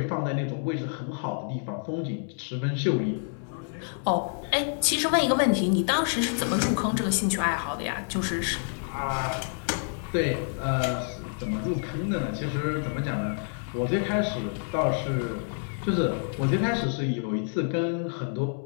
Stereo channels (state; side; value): silent; right; 59 dB below the other